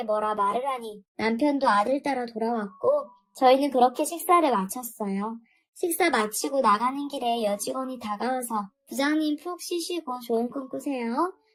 뭐라 말을 하니 남편도 아들 따라 돌아왔고 저희는 그렇게 식사를 마쳤어요. 식사 마치고 나가는 길에 여직원이 다가와서 부장님 푹 쉬시고 좋은 꿈 꾸세요.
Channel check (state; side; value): identical; both; correlation 1.00